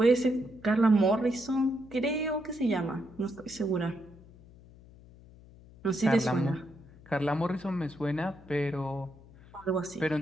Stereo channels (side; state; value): left; noise; hum, 22 dB below the sound